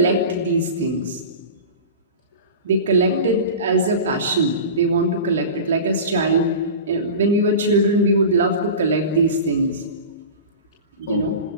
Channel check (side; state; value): both; inverted; correlation -0.32